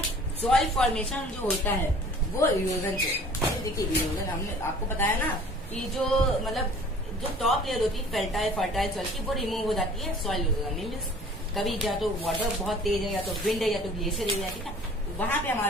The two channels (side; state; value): both; normal; correlation 0.49